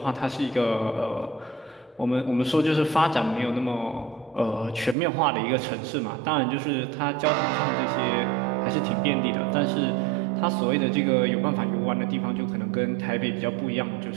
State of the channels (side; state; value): left; drops out; at 5.0 s